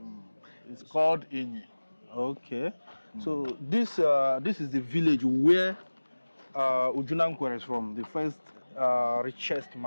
it's called Inyi. Okay. So this is the village where Ojukwu is from, the first richest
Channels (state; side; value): inverted; both; correlation -1.00